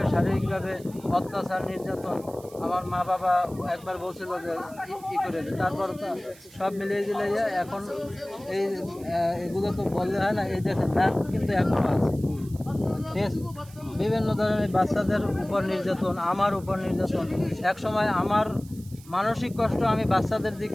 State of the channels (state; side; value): noise; right; hiss, 22 dB below the sound